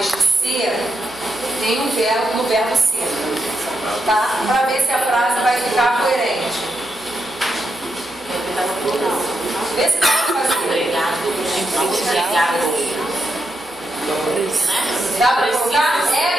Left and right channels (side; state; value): both; normal; correlation 0.83